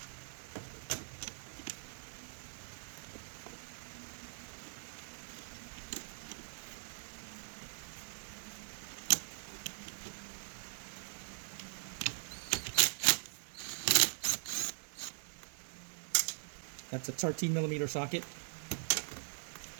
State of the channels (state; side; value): silent; left; digital silence